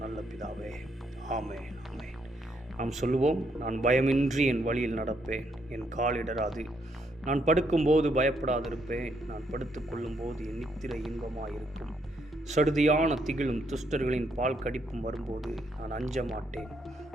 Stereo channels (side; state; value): both; normal; correlation 0.74